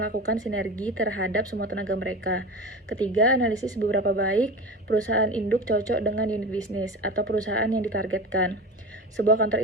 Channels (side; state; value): both; normal; correlation 0.30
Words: sinergi terhadap semua tenaga mereka. Ketiga, analisis seberapa baik perusahaan induk cocok dengan unit bisnis atau perusahaan yang ditargetkan. Sebuah kantor